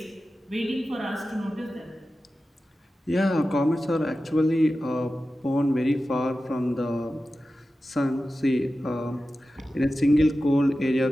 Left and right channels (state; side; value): normal; both; correlation 0.94